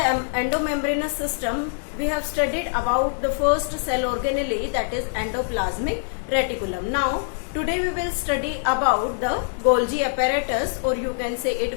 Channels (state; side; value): silent; right; digital silence